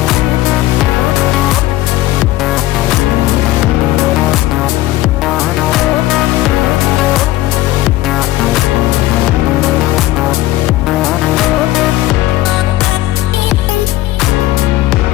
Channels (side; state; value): right; quieter; 16.4 dB